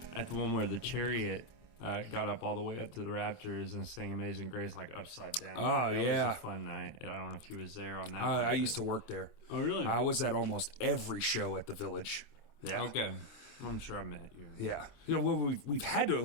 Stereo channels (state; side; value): late; right; 26 ms